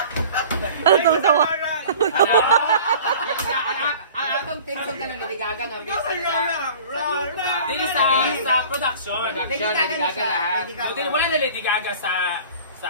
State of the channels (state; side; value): inverted; both; correlation -0.44